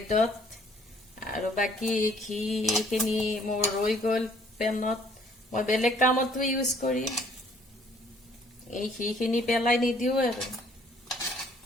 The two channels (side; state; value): both; normal; correlation 0.60